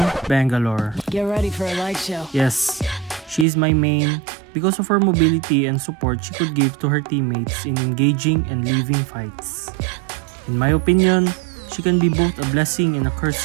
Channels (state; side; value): drops out; left; at 3.5 s